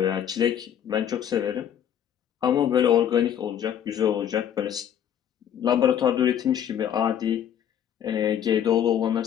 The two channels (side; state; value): right; quieter; 9.6 dB